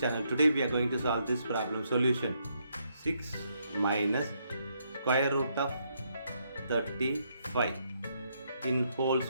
channel. Today we are going to solve this problem. Solution: 6 minus square root of 35 in whole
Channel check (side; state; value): both; inverted; correlation -0.75